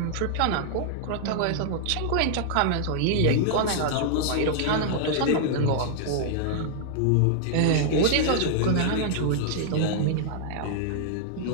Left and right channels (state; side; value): different; both; correlation -0.01